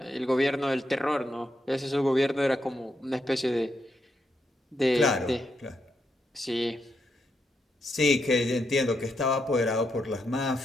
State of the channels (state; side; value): normal; both; correlation 0.81